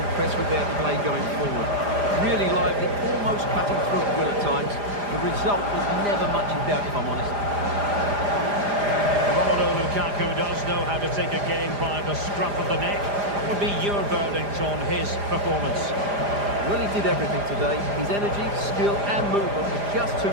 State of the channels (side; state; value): left; late; 4.9 ms